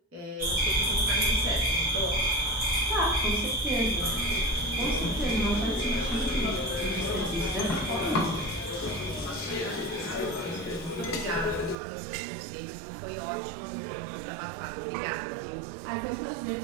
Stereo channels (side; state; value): left; drops out; at 11.8 s